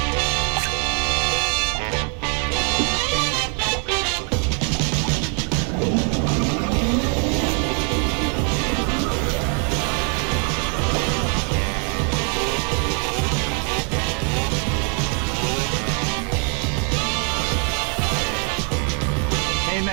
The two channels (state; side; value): quieter; left; 39.4 dB